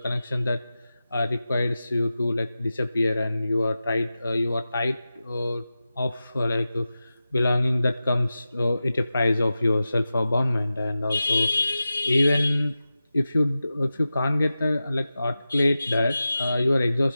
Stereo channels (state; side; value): inverted; both; correlation -0.94